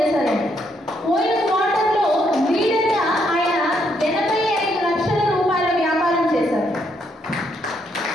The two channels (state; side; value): normal; both; correlation 0.74